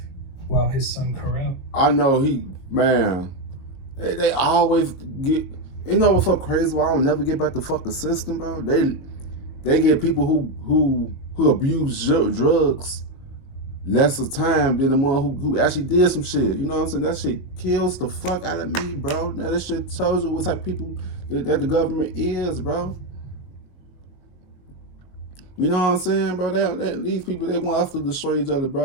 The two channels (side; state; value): right; late; 22 ms